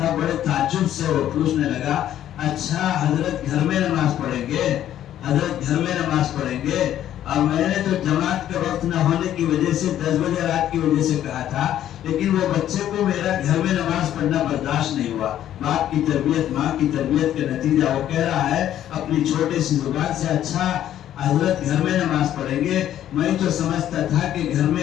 بڑے تعجب سے وہ پوچھنے لگا، اچھا حضرت گھر میں نماز پڑھیں گے، حضرت گھر میں نماز پڑھیں گے؟ اور میں نے تو جماعت کا وقت نہ ہونے کی وجہ سے 10 بجے رات کی وجہ سے کہا تھا، لیکن وہ بچے کو میرا گھر میں نماز پڑھنا برداشت نہیں ہوا۔ باپ کی تربیت، ماں کی تربیت کا نتیجہ وہ کہہ رہا ہے اپنی چھوٹے سی زبان سے، اچھا حضرت گھر میں نماز پڑھیں گے. میں تو سمجھتا تھا کہ گھر میں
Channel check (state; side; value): quieter; right; 11.5 dB